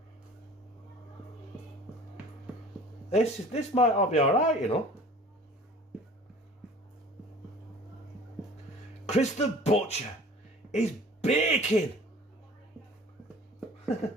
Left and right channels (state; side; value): normal; both; correlation 0.46